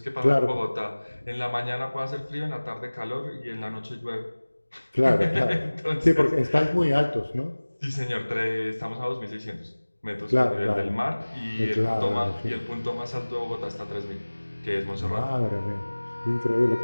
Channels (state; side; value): inverted; both; correlation -1.00